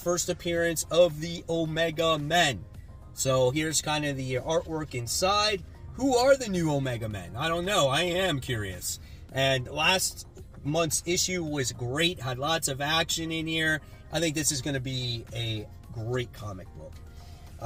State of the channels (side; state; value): both; identical; correlation 1.00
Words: appearance of the Omega Men. So here's kind of the artwork inside. Who are the new Omega Men? I don't know. I am curious. And last month's issue was great. Had lots of action in here. I think this is going to be a great comic book.